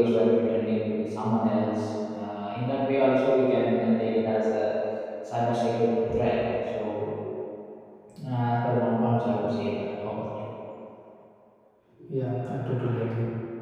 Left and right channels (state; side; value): identical; both; correlation 1.00